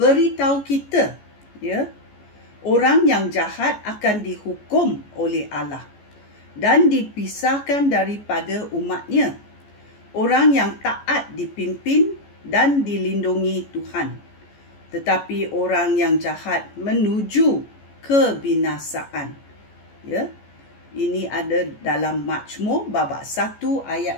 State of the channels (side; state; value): right; late; 14 ms